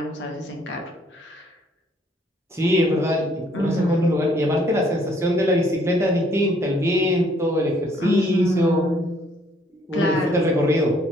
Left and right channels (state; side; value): normal; both; correlation 0.65